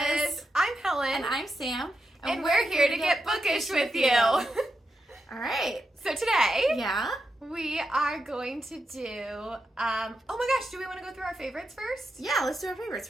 I'm Helen. And I'm Sam. And we're here to get bookish with you. All right. So today, Yeah. we are going to do, oh my gosh, do we want to go through our favorites first? Yeah, let's do our favorites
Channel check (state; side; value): normal; both; correlation 0.86